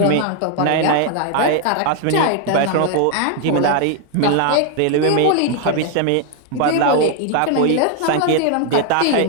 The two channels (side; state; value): both; different; correlation 0.00